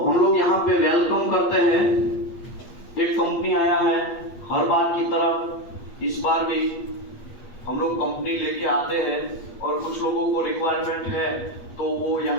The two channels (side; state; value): right; late; 8.4 ms